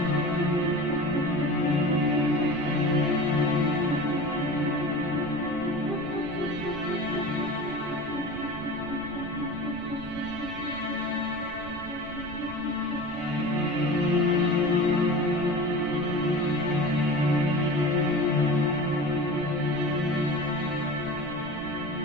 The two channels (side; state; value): right; noise; rumble, 14 dB below the sound